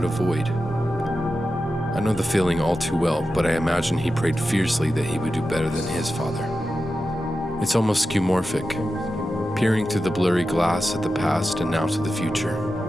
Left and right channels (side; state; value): both; normal; correlation 0.91